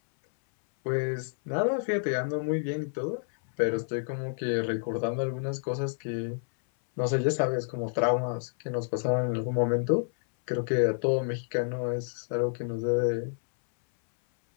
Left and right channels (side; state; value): right; silent; 59 dB below the other